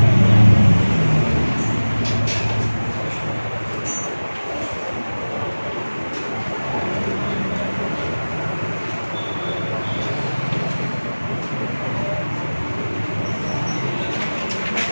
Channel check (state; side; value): inverted; both; correlation -1.00